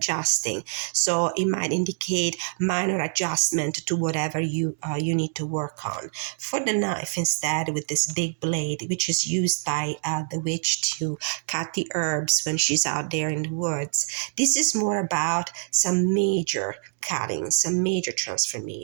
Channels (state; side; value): silent; left; digital silence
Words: So it might indicate minor adjustment to whatever you need to work on. For the knife, instead, with this big blade, which is used by the witch to cut the herbs when she's out there in the woods, this is more about some major cutting, some major